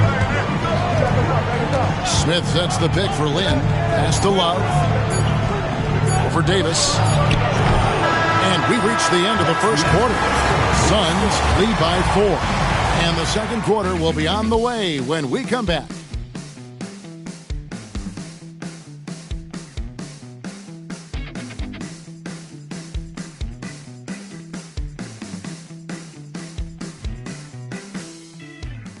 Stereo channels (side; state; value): both; identical; correlation 1.00